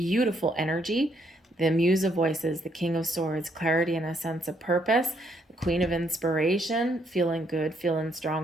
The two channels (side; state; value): both; normal; correlation 0.72